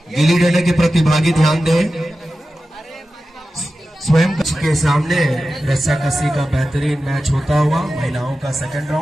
गिल्ली डंडे के प्रतिभागी ध्यान दें। स्वयं के सामने रस्साकसी का बेहतरीन मैच होता हुआ महिलाओं का सेकंड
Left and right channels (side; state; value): both; normal; correlation 0.93